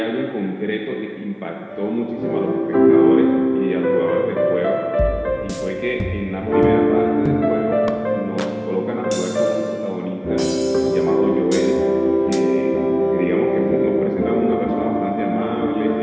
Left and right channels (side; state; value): both; identical; correlation 1.00